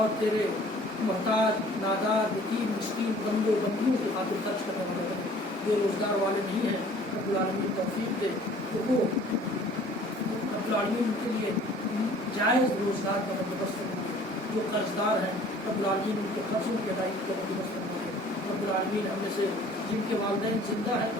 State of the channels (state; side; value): normal; both; correlation 0.52